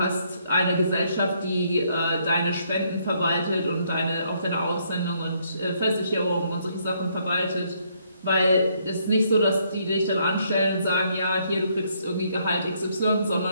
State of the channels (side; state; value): both; inverted; correlation -0.71